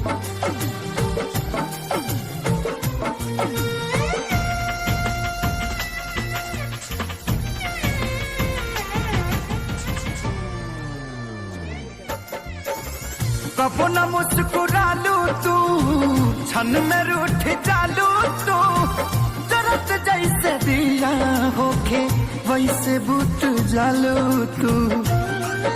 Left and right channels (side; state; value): both; identical; correlation 1.00